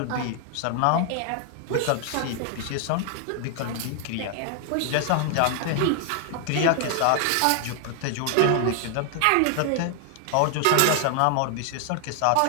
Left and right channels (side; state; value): both; different; correlation 0.00